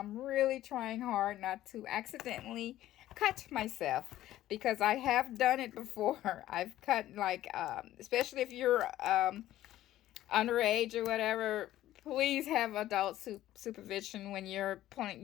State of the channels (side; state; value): right; quieter; 14.0 dB